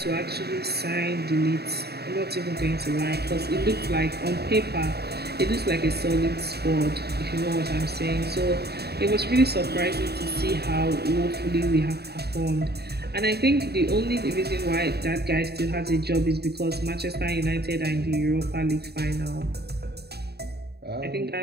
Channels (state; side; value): late; left; 0.47 ms